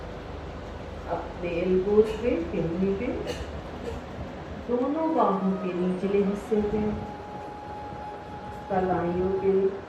अपने एल्बोज पे, हिंदी पे, दोनों बाहों के निचले हिस्से पे, कलाइयों पे,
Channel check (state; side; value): identical; both; correlation 1.00